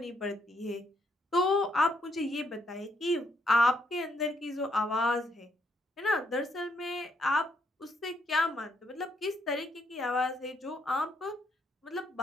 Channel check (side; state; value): both; normal; correlation 0.73